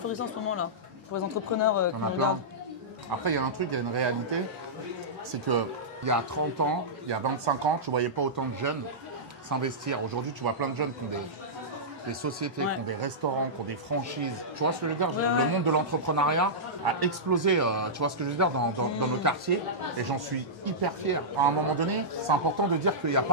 en ce moment là? Pour les entrepreneurs Il y en a plein. Après, il y a un truc, il y a une réalité, c'est qu'il y a 30 ans, il y a 25 ans, tu ne voyais pas autant de jeunes s'investir. Aujourd'hui, tu vois plein de jeunes qui ont des sociétés, qui ont des restaurants, qui ont des franchises. Tu vois ce que je veux dire? Le monde de l'entrepreneuriat a explosé, tu vois ce que je veux dire, dans nos quartiers. Et j'en suis hyper fier. À un moment donné, c'est important de dire qu'il n'y a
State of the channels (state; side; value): normal; both; correlation -0.14